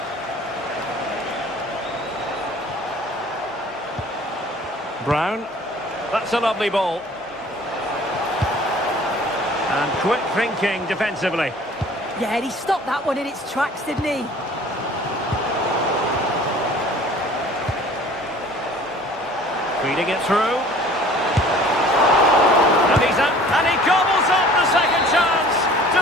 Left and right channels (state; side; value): normal; both; correlation 0.49